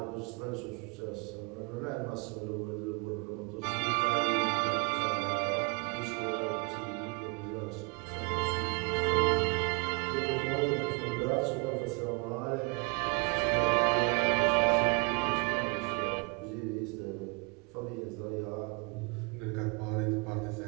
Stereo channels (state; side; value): quieter; left; 31.0 dB